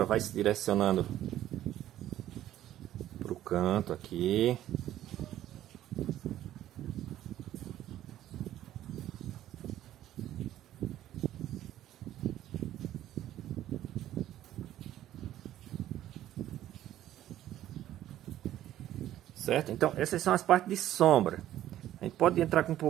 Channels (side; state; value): left; quieter; 12.8 dB